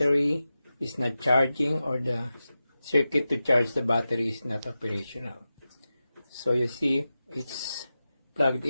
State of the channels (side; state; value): both; inverted; correlation -0.93